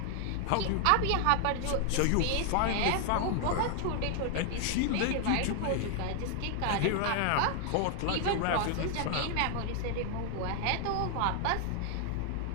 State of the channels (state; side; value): different; both; correlation 0.00